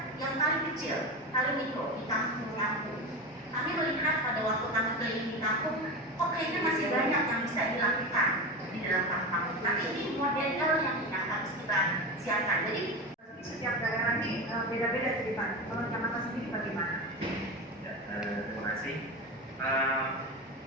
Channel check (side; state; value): both; normal; correlation 0.23